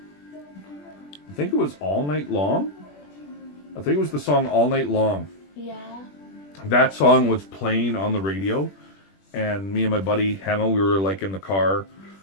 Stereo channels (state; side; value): late; right; 21 ms